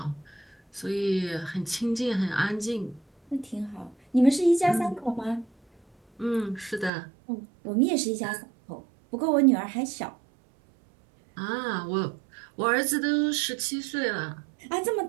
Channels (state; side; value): drops out; left; at 6.9 s